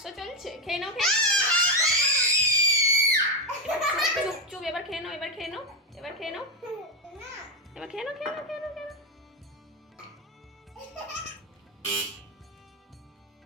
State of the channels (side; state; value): both; normal; correlation 0.08